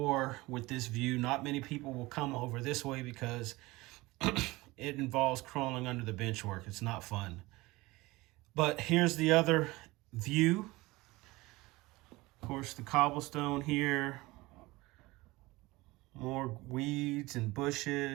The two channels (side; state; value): left; quieter; 21.0 dB